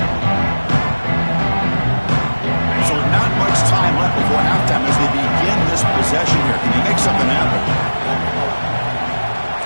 So not much time left before halftime as they begin this possession here. Can you make something happen?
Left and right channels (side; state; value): both; inverted; correlation -1.00